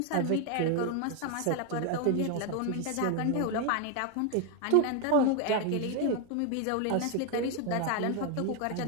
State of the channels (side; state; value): both; different; correlation 0.01